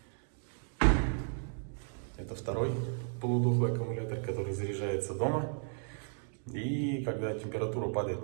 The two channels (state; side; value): silent; left; 55 dB below the other